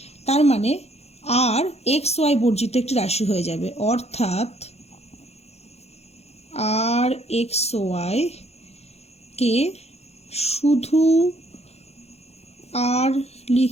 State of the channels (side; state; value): right; late; 0.31 ms